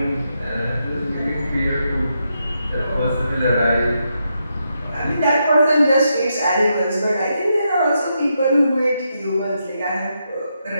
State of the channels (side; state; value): both; inverted; correlation -0.82